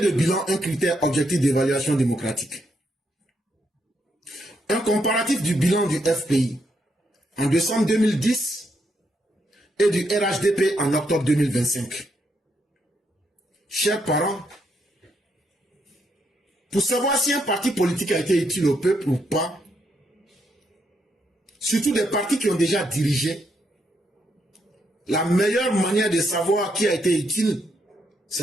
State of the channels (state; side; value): normal; both; correlation 0.77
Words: bilan, un critère objectif d'évaluation démocratique. Un comparatif du bilan du FPI en décembre 2010 et du RHDP en octobre 2025. Chers parents, pour savoir si un parti politique a été utile au peuple ou pas, surtout des partis qui ont déjà dirigé, la meilleure manière de savoir qui a été utile,